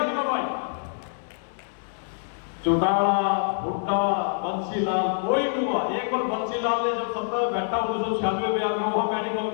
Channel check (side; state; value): right; silent; digital silence